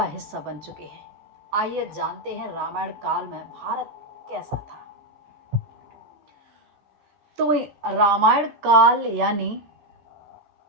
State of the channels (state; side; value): late; left; 14 ms